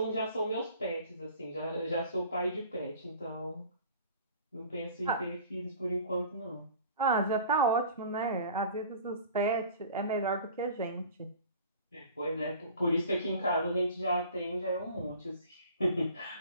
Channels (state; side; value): inverted; both; correlation -0.45